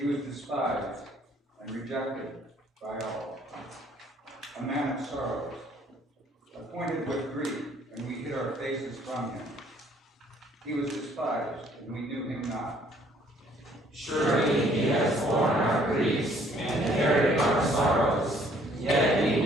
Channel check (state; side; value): normal; both; correlation 0.61